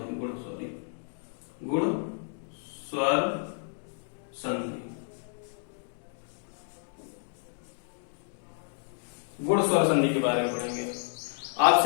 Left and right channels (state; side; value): silent; right; digital silence